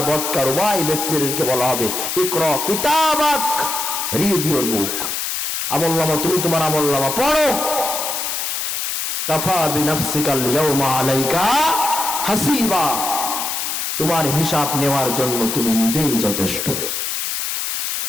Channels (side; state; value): left; noise; hiss, 2 dB below the sound